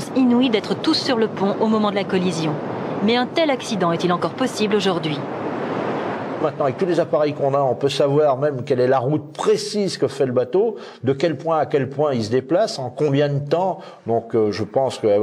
inouïe d'être tous sur le pont au moment de la collision. Mais un tel accident est-il encore possible aujourd'hui ? Maintenant, avec tous les appareils qu'on a, on peut savoir même quelle est la route précise que fait le bateau, de quel point à quel point il se déplace, en combien de temps. Donc je pense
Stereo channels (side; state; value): both; identical; correlation 1.00